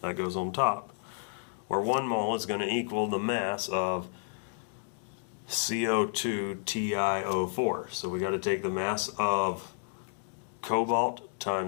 That goes on top, where 1 mole is going to equal the mass of CO2TiO4. So we got to take the mass of cobalt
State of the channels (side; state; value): right; silent; digital silence